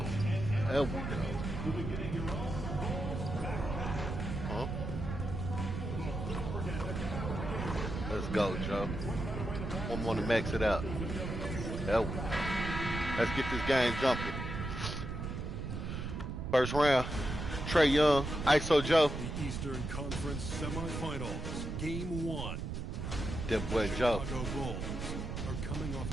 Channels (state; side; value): noise; right; rumble, 4 dB below the sound